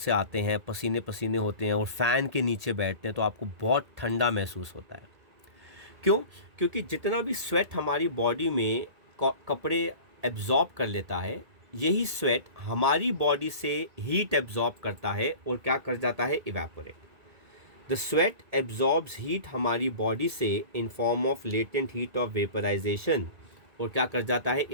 आते हैं, पसीने पसीने होते हैं और फ़ैन के नीचे बैठते हैं तो आपको बहुत ठंडा महसूस होता है। क्यों? क्योंकि जितना भी स्वेट हमारी बॉडी में कपड़े एब्जॉर्ब कर लेता है, यही स्वेट हमारी बॉडी से हीट एब्जॉर्ब करता है और क्या कर जाता है, evaporate. The sweat absorbs heat हमारी बॉडी से in form of latent heat of vaporization और क्या कर जाता है,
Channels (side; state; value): left; late; 2.2 ms